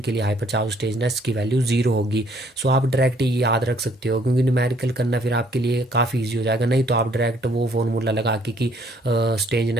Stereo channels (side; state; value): both; normal; correlation 0.64